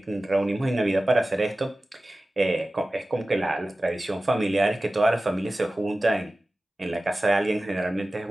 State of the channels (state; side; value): normal; both; correlation 0.96